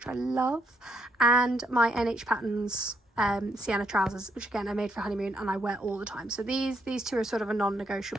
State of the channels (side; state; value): both; normal; correlation 0.75